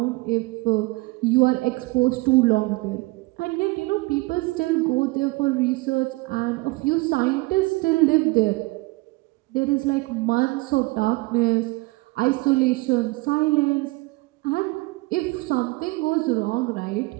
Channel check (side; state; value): left; quieter; 23.5 dB